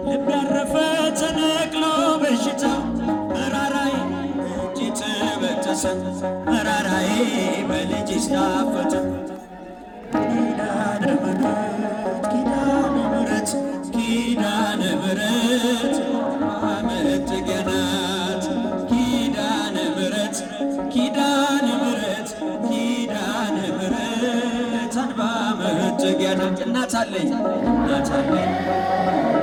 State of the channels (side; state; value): both; identical; correlation 1.00